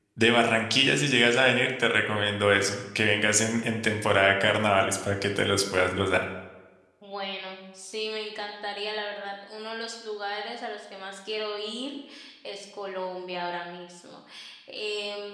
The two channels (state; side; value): identical; both; correlation 1.00